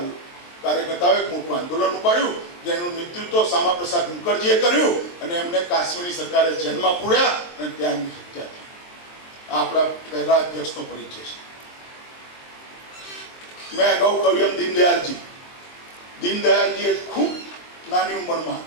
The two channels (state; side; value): late; right; 23 ms